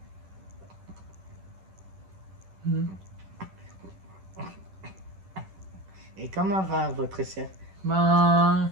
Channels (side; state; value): left; late; 11 ms